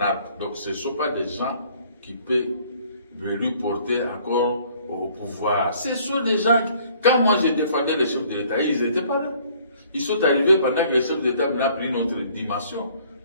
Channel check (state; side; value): inverted; both; correlation -0.59